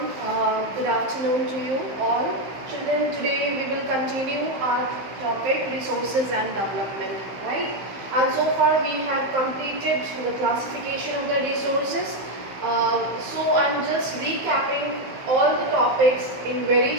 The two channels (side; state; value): left; late; 15 ms